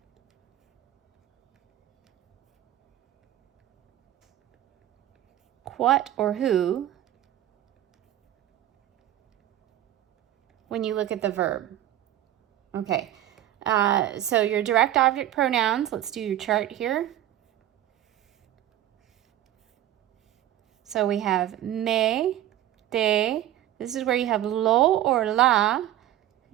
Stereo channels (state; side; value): quieter; left; 12.9 dB